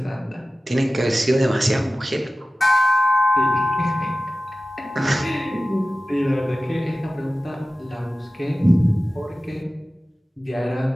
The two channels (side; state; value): both; normal; correlation 0.96